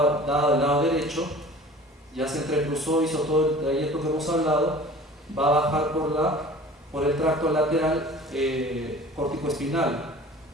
del lado derecho, ya se entrecruzó, hizo todo el trayecto que hemos hablado, va a bajar por el tracto lateral córtico-espinal.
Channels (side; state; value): both; normal; correlation 0.44